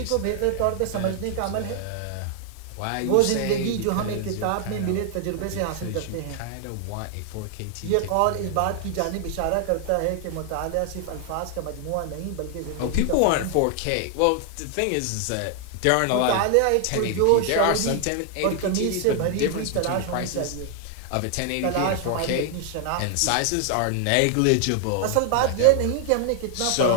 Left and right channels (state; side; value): different; both; correlation 0.00